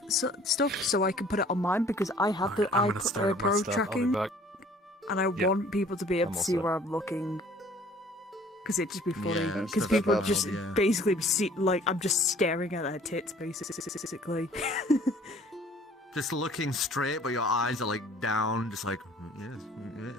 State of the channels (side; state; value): both; normal; correlation 0.54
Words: stuff so I can put it on mine because I have the I'm eye gonna start up my Pro stuff. tracking, I'll be back. and I Yeah. want people to be able I'm to all see set. where I'm looking. Because it'd just be funny. Yeah, Because set that people up, just yeah. basically see, like, I'm just staring at their tits, basically. Just looking straight, but your eyes are like down, just like